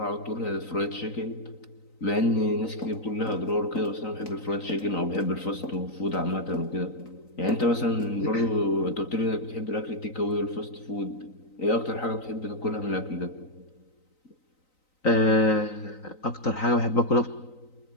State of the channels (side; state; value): right; late; 3.9 ms